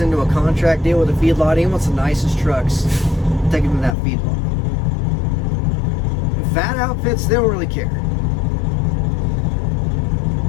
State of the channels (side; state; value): right; drops out; at 4.0 s